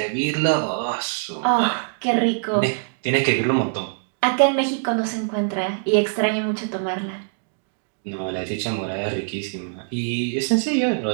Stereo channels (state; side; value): silent; left; digital silence